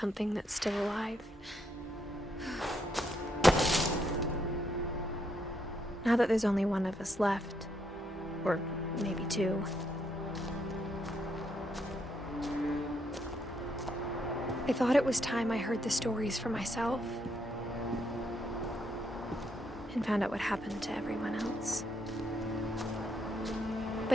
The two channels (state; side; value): normal; both; correlation 0.76